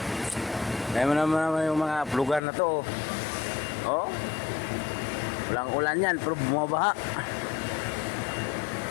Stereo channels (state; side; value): drops out; right; at 2.4 s